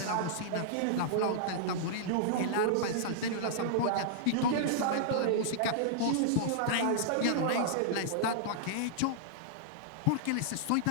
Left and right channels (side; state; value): both; different; correlation -0.02